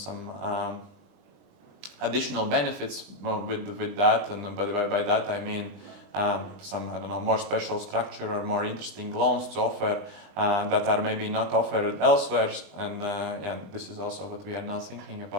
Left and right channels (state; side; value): late; left; 21 ms